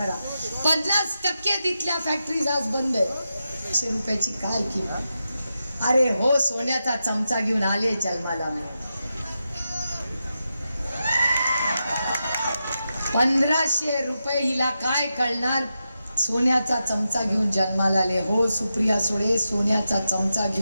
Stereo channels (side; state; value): both; inverted; correlation -0.89